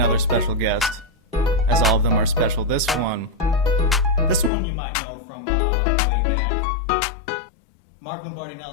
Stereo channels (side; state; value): right; drops out; at 4.5 s